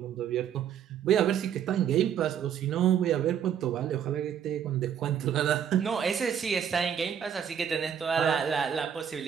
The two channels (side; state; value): left; quieter; 8.7 dB